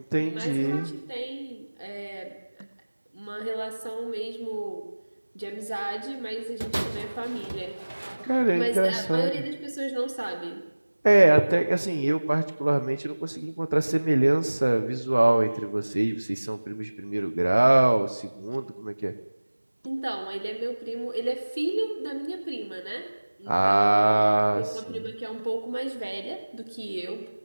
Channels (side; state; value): both; inverted; correlation -1.00